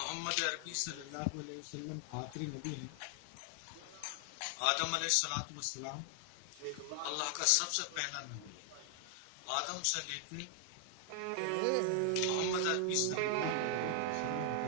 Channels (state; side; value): different; both; correlation 0.00